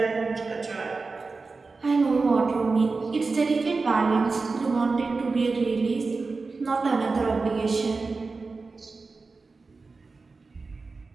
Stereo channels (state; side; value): quieter; left; 4.0 dB